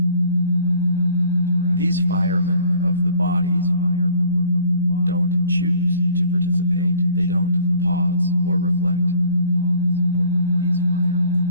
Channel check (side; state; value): both; inverted; correlation -0.53